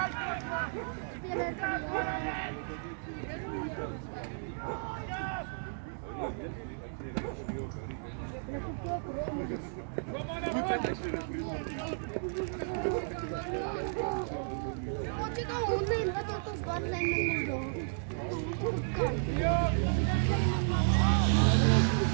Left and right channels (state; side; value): silent; left; digital silence